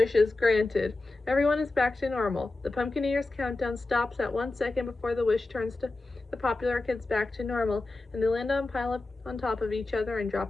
is granted. Everyone is back to normal. The Pumpkinator's countdown stops at 1 second before the wish turns to the popular kids back to normal, and they land on pile up on top of each other and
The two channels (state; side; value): quieter; right; 3.2 dB